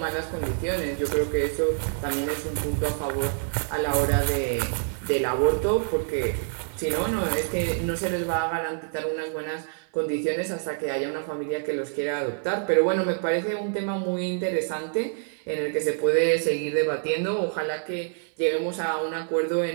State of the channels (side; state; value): left; silent; 60 dB below the other